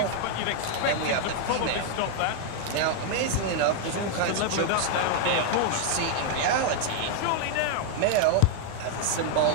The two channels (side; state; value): both; different; correlation 0.00